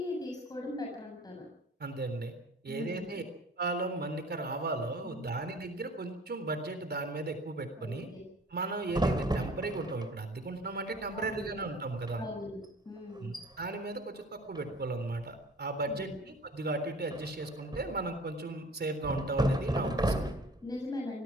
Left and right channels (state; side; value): normal; both; correlation 0.47